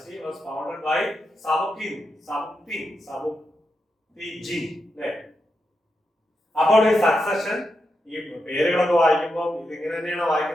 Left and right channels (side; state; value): both; normal; correlation 0.86